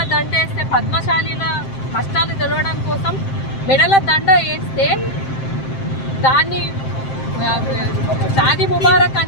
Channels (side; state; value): right; late; 7.6 ms